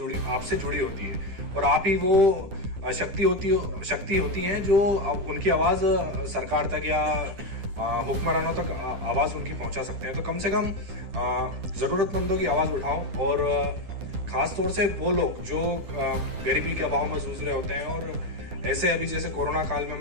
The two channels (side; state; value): left; late; 9.8 ms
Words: जुड़ी होती है, और आप ही वो शक्ति होती हैं जो उनकी आवाज सरकार तक या हुक्मरानों तक आवाज उनकी पहुंचा सकते हैं। तो कम से कम जरूरतमंदों की आवाज उठाओ, और खास तौर से वो लोग जो गरीबी के अभाव में जूझ रहे होते हैं। और ऐसे अभी जैसे कोरोना काल में